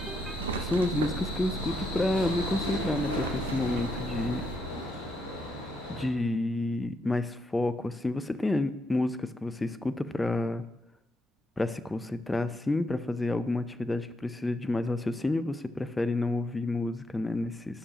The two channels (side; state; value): both; normal; correlation 0.80